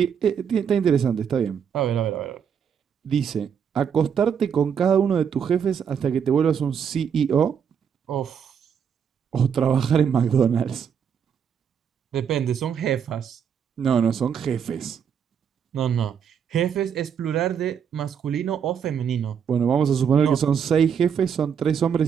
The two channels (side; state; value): left; quieter; 7.5 dB